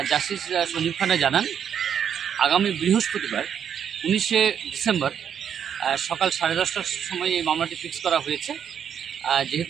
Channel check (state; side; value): quieter; left; 8.4 dB